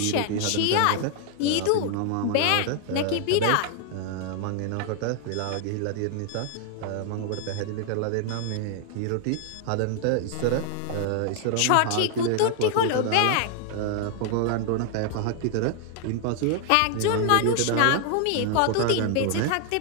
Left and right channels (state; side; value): different; both; correlation 0.00